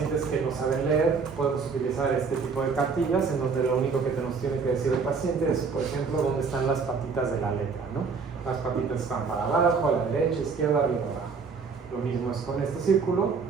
que no saben leer podemos utilizar este tipo de cartillas en donde lo único que nos tiene que decir el paciente es, por ejemplo, dónde están las patitas de la letra, ¿no? Las patitas están para abajo, a la derecha, izquierda, arriba, abajo. Lo mismo es con este círculo,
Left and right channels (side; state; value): left; quieter; 5.2 dB